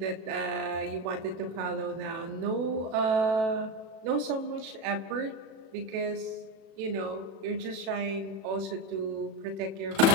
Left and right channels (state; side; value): late; left; 37 ms